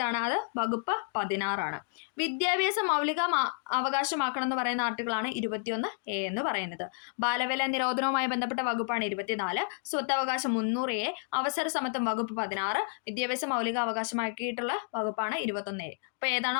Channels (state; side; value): silent; right; 57 dB below the other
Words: അത് വകുപ്പ് 16 വിദ്യാഭ്യാസം മൗലിക അവകാശമാക്കണം എന്ന് പറയുന്ന ആർട്ടിക്കിളാണ് 21A എന്ന് പറയുന്നത്. ബാലവേല നിരോധനവുമായി ബന്ധപ്പെട്ട വകുപ്പാണ് 24, സ്വത്തവകാശം 300A, അവസര സമത്വം വകുപ്പ് 16, വിദ്യാഭ്യാസം മൗലിക അവകാശമാക്കിയിട്ടുള്ള വകുപ്പാണ് 21A. അപ്പൊ ഏതാണ്?